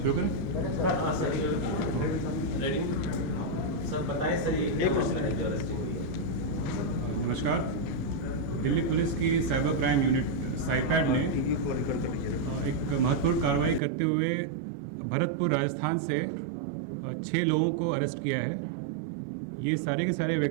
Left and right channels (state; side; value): drops out; left; at 13.8 s